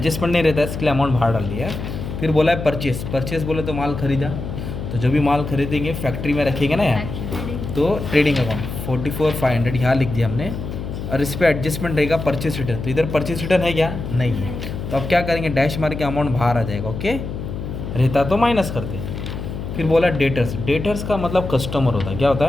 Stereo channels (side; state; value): left; noise; hum, 7 dB below the sound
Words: नहीं रहता है, इसके लिए अमाउंट बाहर डाल दिया। फिर बोला है परचेस। परचेस बोले तो माल खरीदा, तो जो भी माल खरीदेंगे फैक्ट्री में रखेंगे ना यार, तो ट्रेडिंग अकाउंट 44,500 यहाँ लिख दिया हमने। और इस पर एडजस्टमेंट रहेगा परचेस रिटर्न। तो इधर परचेस रिटर्न है क्या, नहीं है, तो अब क्या करेंगे, डैश मार के अमाउंट बाहर आ जाएगा। ओके, रहता तो माइनस करते। फिर बोला डेटर्स। डेटर्स का मतलब कस्टमर होता है, क्या होता